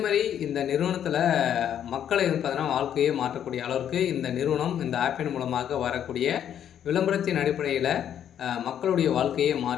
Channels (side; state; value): right; quieter; 9.7 dB